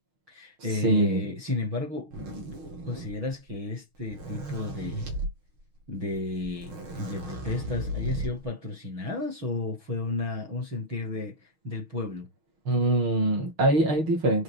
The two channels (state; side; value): late; left; 6.3 ms